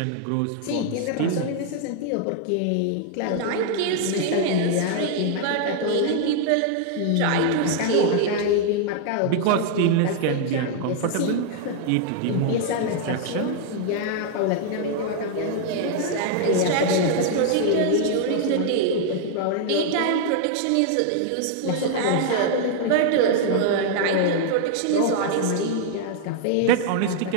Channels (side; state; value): both; different; correlation 0.00